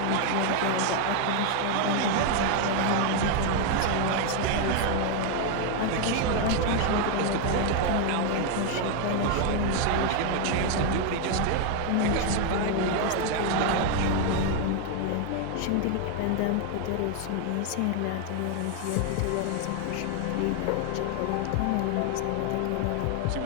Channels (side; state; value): both; different; correlation 0.01